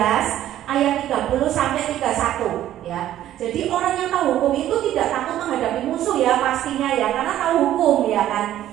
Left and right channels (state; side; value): quieter; left; 12.5 dB